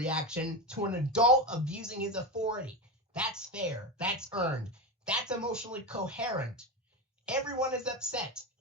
to an adult abusing his authority. That's fair. That's earned. That's emotionally coherent. Everyone is upset.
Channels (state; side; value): normal; both; correlation 0.17